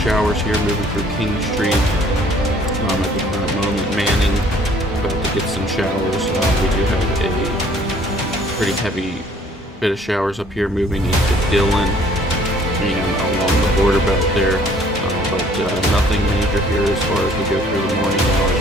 showers here moving through King Street. At the current moment, Manning about to get some showers. We do have a pretty heavy bit of showers up here moving into Dillon and along the border belt there, but nothing major here as far as we go through the morning hours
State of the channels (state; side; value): normal; both; correlation 0.58